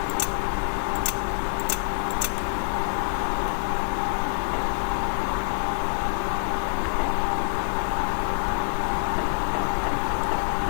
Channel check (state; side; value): silent; right; 61 dB below the other